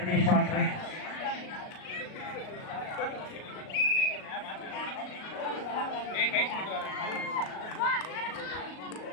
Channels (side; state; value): right; late; 38 ms